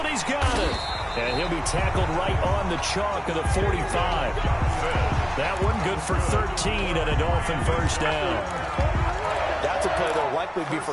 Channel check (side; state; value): both; identical; correlation 1.00